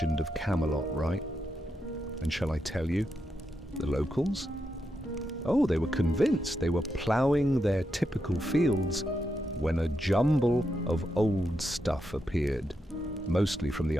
of Camelot, right? And shall I tell you, the locals? Oh, they were convinced. They were ploughing their typical fields when a jumble of old stuff appeared, mostly from the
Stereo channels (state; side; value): normal; both; correlation 0.84